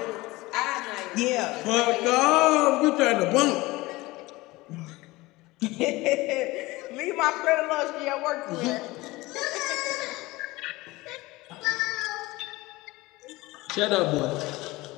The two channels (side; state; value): right; quieter; 20.6 dB